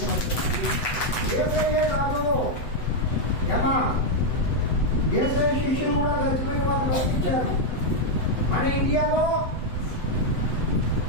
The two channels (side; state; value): right; late; 8.0 ms